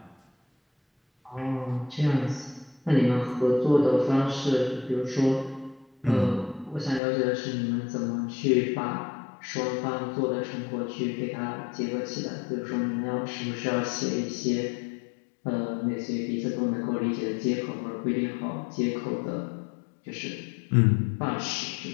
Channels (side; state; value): right; drops out; at 7.0 s